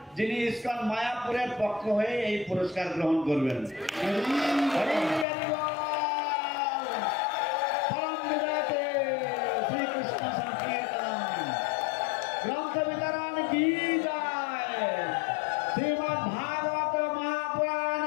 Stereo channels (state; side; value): drops out; right; at 5.2 s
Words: যিনি ইসকন মায়াপুরের পক্ষ হয়ে এই পুরস্কার গ্রহণ করবেন। গ্রন্থ বিতরণ কি যায়, শ্রীমৎ ভাগবত মহাপুরাণ